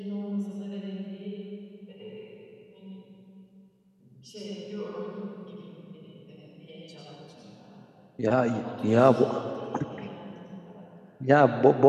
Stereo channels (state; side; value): identical; both; correlation 1.00